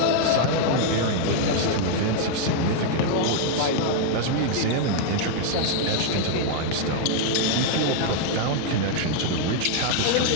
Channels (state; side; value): different; both; correlation 0.00